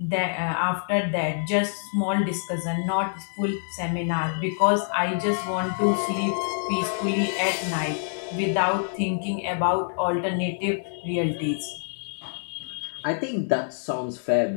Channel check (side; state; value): right; silent; 61 dB below the other